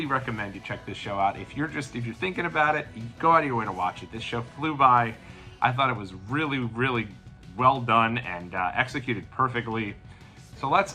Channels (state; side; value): identical; both; correlation 1.00